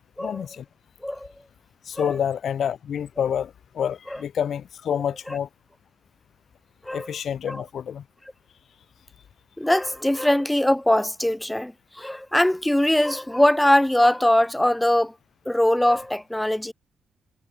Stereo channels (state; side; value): normal; both; correlation 0.97